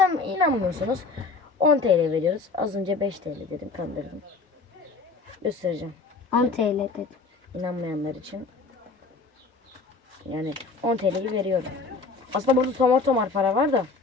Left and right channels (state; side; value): quieter; right; 4.2 dB